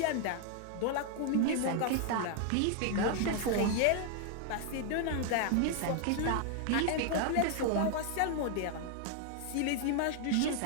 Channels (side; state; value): both; different; correlation 0.00